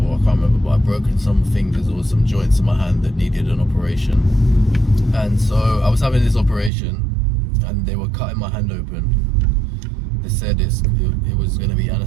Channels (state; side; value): drops out; left; at 6.7 s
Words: I can't remember, but I've broken some fingers or some joints in my hand that needed an operation. And so I was having this operation and they were cutting my hand open. They said it was going to be